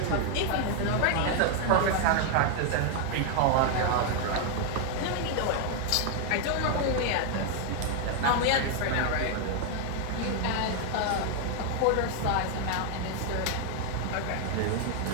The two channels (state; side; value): different; both; correlation 0.00